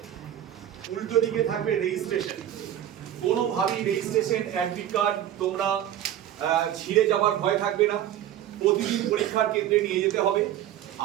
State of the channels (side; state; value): left; quieter; 11.5 dB